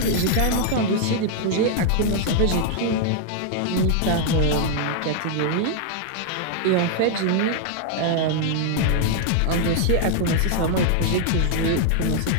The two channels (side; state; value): both; different; correlation 0.00